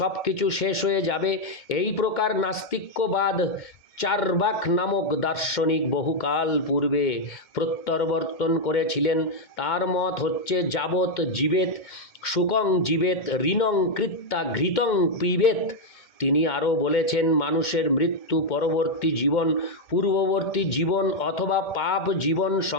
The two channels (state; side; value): late; right; 2.1 ms